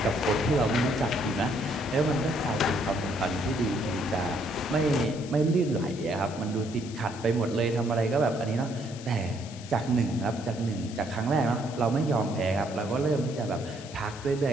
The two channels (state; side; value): noise; left; hiss, 16 dB below the sound